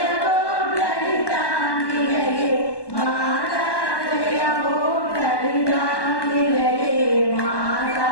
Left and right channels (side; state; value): right; late; 1.2 ms